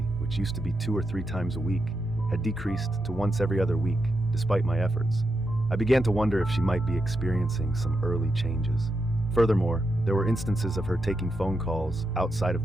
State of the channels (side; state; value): both; normal; correlation 0.86